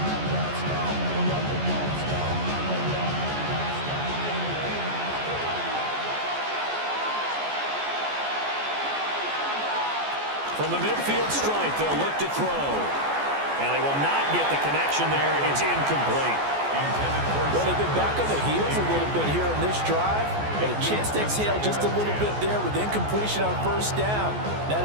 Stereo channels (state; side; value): late; left; 14 ms